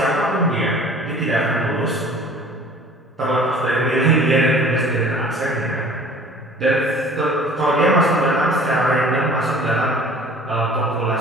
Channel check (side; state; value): both; normal; correlation 0.48